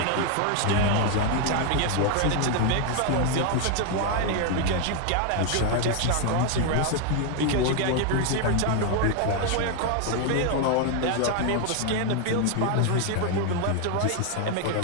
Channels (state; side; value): different; both; correlation 0.01